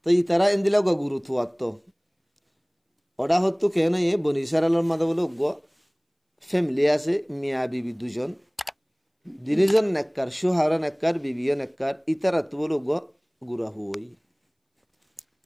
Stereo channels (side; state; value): both; identical; correlation 1.00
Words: তো ইতারা ইন্দিলা গুরুত্ব আত্ম অডা হতো কেন এ বনি সারালর মাদা বলে গ ফ্যামিলি আছে মিয়া বিবি দুজন দিনিজন নেককার সুহারা নেককার বিবিও নেককার ইতারা তো বলো গ গুরা হই